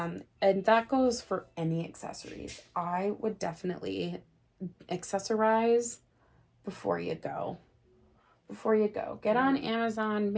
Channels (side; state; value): both; identical; correlation 1.00